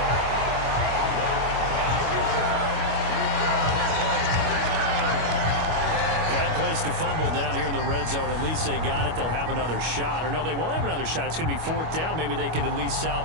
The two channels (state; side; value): late; left; 25 ms